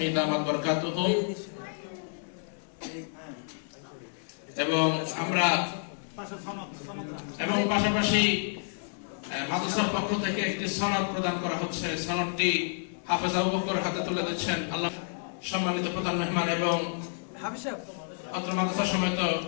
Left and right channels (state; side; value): silent; right; 58 dB below the other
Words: দামাত বরকাতুহু। এবং পাশাপাশি মাদ্রাসার পক্ষ থেকে একটি সনদ প্রদান করা হচ্ছে। সনদটি হাফেজ আবু বকর হাতে তুলে দিচ্ছেন আল্লাহ সম্মানিত প্রধান মেহমান এবং অত্র মাদ্রাসা সমেত